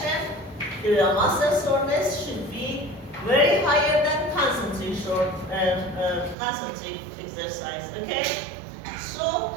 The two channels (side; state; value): left; drops out; at 6.4 s